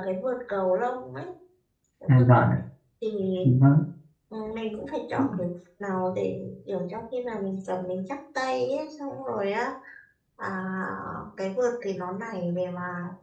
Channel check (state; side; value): identical; both; correlation 1.00